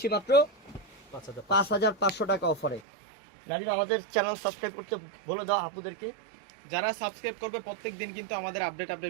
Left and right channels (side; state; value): left; drops out; at 2.8 s